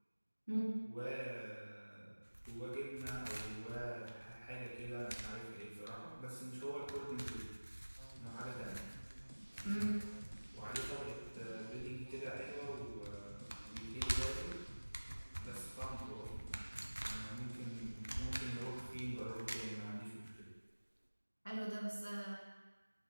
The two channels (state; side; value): inverted; both; correlation -1.00